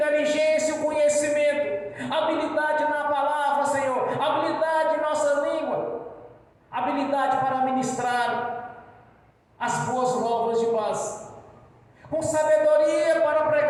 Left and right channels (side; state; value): both; identical; correlation 1.00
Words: conhecimento, habilidade na palavra, Senhor, habilidade em nossa língua, habilidade para ministrar as boas novas de paz, com sabedoria para